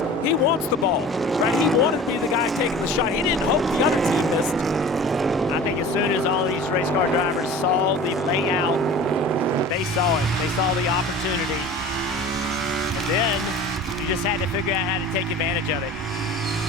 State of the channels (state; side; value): normal; both; correlation 0.40